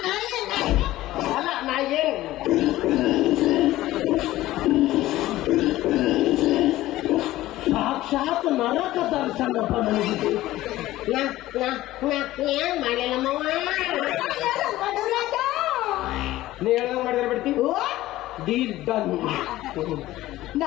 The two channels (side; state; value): right; quieter; 16.0 dB